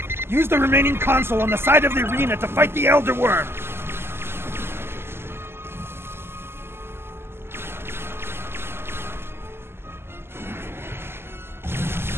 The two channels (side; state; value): left; late; 0.12 ms